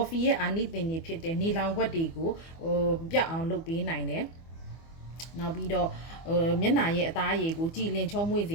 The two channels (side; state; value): right; late; 24 ms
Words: ရဲ့အာနိသင်တွေဖြစ်တဲ့နေလောင်ခွက်တွေကိုပြတ်အောင်လုပ်ပေးနိုင်တယ်နောက်ပြီးတော့မျက်နှာရဲ့အသားရည်ကိုကြည်လင်ချုံးမွေ့စ